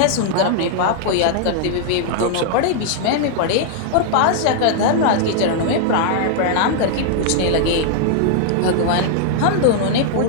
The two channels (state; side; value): different; both; correlation -0.01